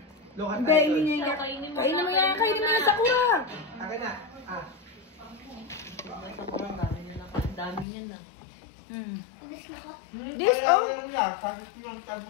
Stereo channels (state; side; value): drops out; right; at 7.9 s